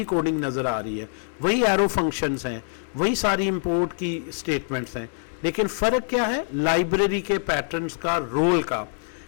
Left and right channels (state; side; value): silent; right; digital silence